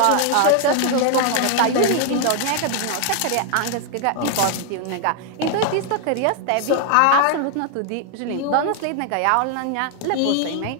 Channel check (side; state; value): both; different; correlation 0.00